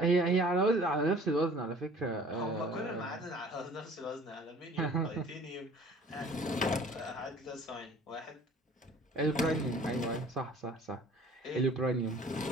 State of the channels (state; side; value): normal; both; correlation 0.49